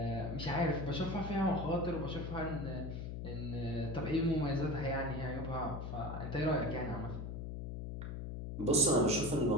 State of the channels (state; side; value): noise; left; hum, 6 dB below the sound